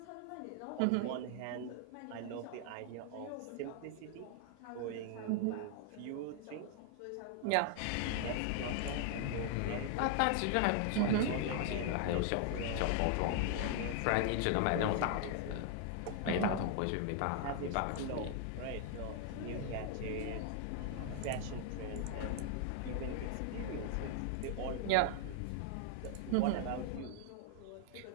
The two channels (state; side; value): different; both; correlation 0.00